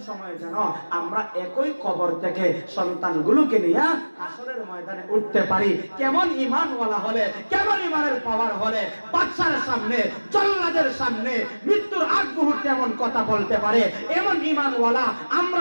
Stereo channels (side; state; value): both; inverted; correlation -1.00